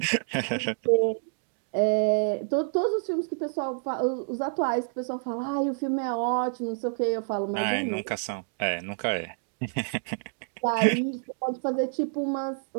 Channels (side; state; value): left; silent; digital silence